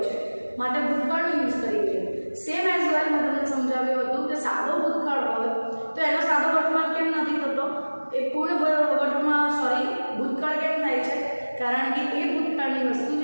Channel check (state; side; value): inverted; both; correlation -1.00